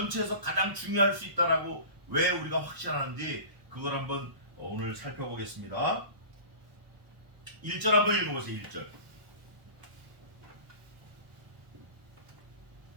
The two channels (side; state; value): left; late; 1.0 ms